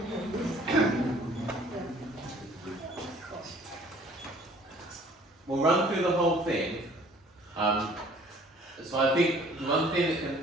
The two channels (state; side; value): normal; both; correlation 0.54